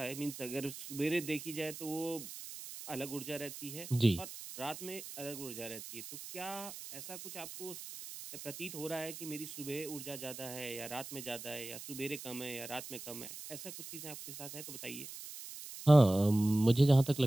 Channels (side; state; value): right; noise; hiss, 11 dB below the sound